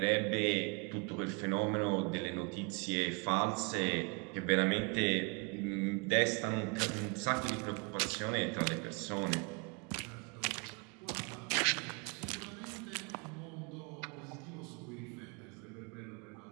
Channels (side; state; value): left; quieter; 33.2 dB